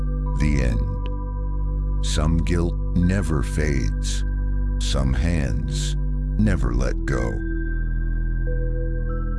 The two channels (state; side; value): identical; both; correlation 1.00